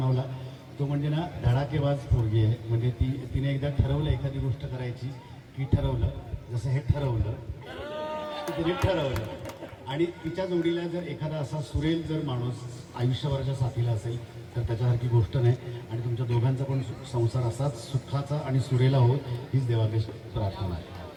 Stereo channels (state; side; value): identical; both; correlation 1.00